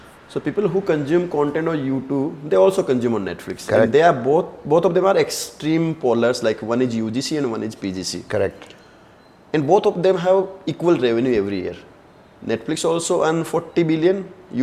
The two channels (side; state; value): both; identical; correlation 1.00